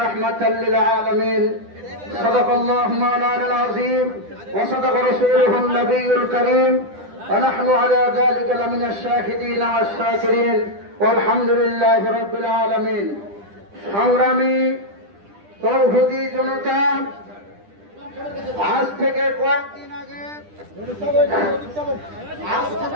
رحمة للعالمين صدق الله مولانا العظيم وصدق رسوله النبي الكريم ونحن على ذلك لمن الشاهدين والشاكرين والحمد لله رب العالمين। সংগ্রামী তৌহিদি জনতা, আজ থেকে কয়েকদিন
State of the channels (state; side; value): late; left; 10 ms